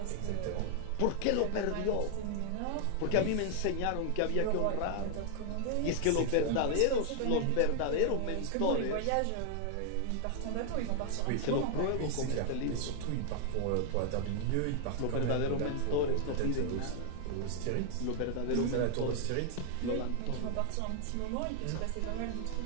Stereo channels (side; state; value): both; different; correlation 0.00